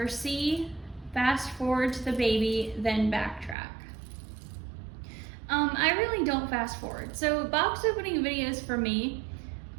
C, fast forward to the baby, then backtrack. I really don't fast forward. So box opening videos for me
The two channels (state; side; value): drops out; left; at 3.6 s